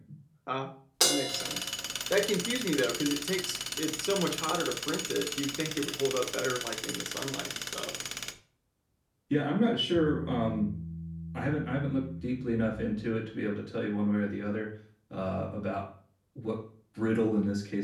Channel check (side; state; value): both; identical; correlation 1.00